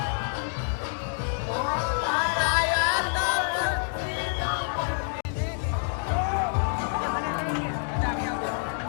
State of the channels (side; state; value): right; silent; 60 dB below the other